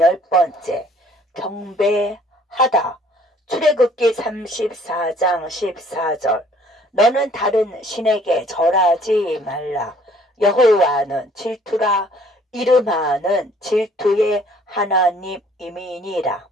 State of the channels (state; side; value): normal; both; correlation 0.58